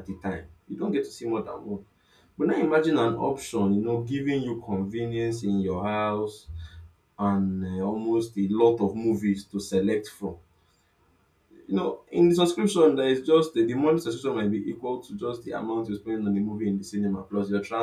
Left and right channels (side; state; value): both; identical; correlation 1.00